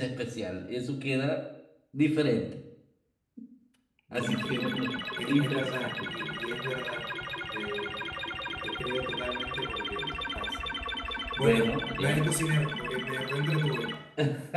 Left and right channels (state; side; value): identical; both; correlation 1.00